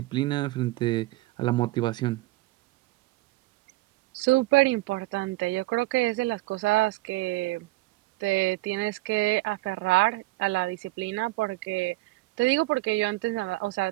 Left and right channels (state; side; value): quieter; left; 19.9 dB